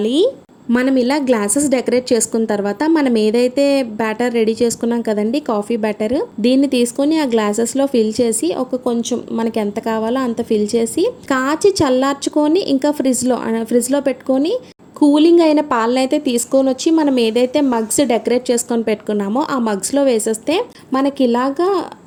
మనం ఇలా గ్లాసెస్ డెకరేట్ చేసుకున్న తర్వాత మనం ఏదైతే బ్యాటర్ రెడీ చేసుకున్నాం కదండి, కాఫీ బ్యాటర్, దీన్ని తీసుకొని ఆ గ్లాసెస్లో ఫిల్ చేసి ఒక కొంచెం మనకి ఎంత కావాలో అంత ఫిల్ చేసి కాచి చల్లార్చుకొని ఇంకా ఫ్రిడ్జ్లో పెట్టుకొని కూలింగ్ అయిన పాలను అయితే తీసుకొని వచ్చి మనం ఏదైతే మగ్స్ డెకరేట్ చేసుకొని పెట్టుకున్నామో ఆ మగ్స్లో వేసేస్తే మనకి ఇలాగా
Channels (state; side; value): identical; both; correlation 1.00